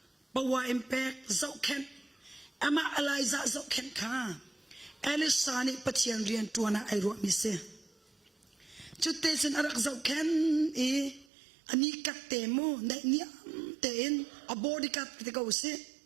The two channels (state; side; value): drops out; left; at 11.2 s